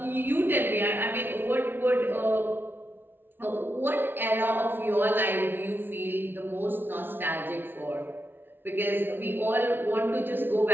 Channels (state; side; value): late; left; 0.10 ms